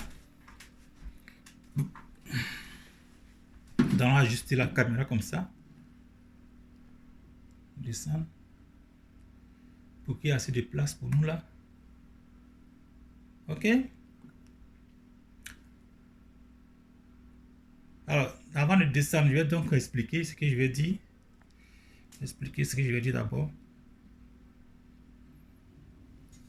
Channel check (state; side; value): identical; both; correlation 1.00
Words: Nous allons ajuster la caméra comme ça. Descendre. Pour qu'il y ait assez de place pour nous là. Ok? Alors, avant de descendre, je vais donc expliquer ce que je vais dire. Expliquer ce que je vais dire d'abord.